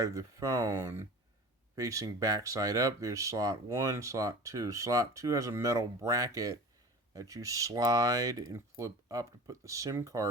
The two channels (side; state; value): both; normal; correlation 0.38